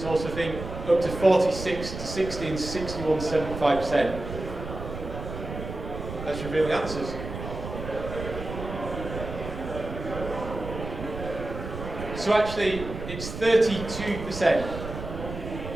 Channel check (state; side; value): noise; right; rumble, 8 dB below the sound